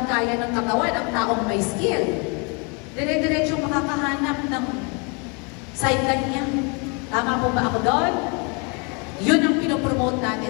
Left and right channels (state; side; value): quieter; right; 33.4 dB